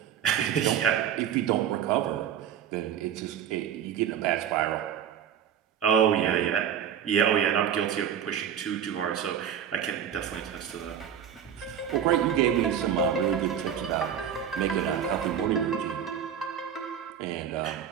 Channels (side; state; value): left; quieter; 8.9 dB